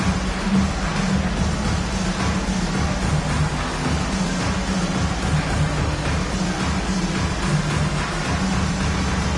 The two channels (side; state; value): both; identical; correlation 1.00